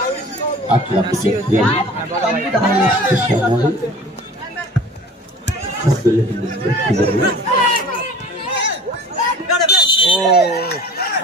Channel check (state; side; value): normal; both; correlation 0.43